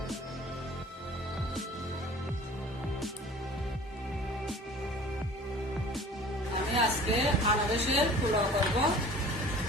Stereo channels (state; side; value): normal; both; correlation 0.46